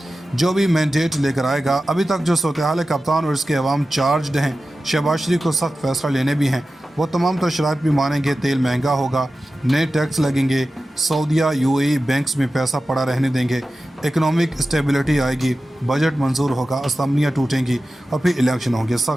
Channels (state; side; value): normal; both; correlation 0.94